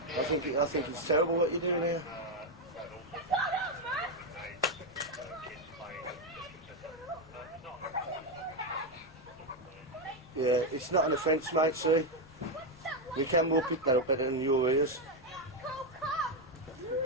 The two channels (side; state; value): left; noise; rumble, 24 dB below the sound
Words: I think it's terrible what you're doing here. Yeah, it's not an offence, mate, see? We can more pick that up better than your ears.